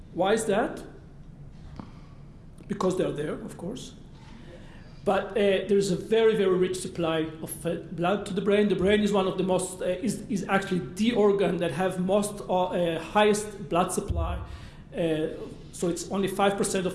Why is that? Because they're there, of course. But there's a very, very rich supply of blood to the brain. The brain is one of the most, is actually the organ that have most highest blood supply. So it's only 5%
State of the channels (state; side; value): identical; both; correlation 1.00